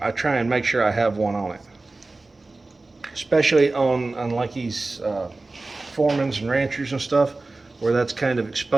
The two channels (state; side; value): quieter; left; 3.3 dB